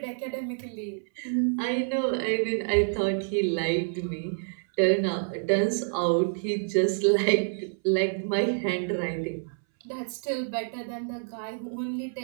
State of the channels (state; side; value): silent; left; 59 dB below the other